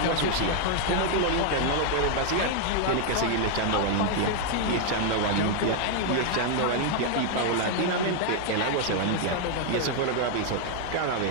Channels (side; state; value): both; different; correlation 0.00